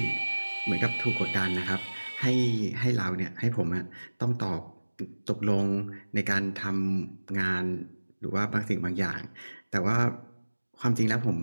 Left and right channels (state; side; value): inverted; both; correlation -1.00